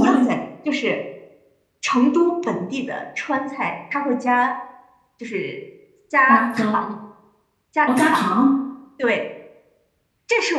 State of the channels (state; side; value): identical; both; correlation 1.00